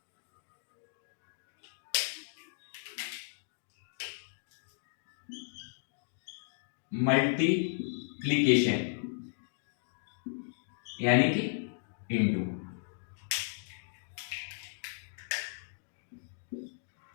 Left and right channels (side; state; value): right; silent; digital silence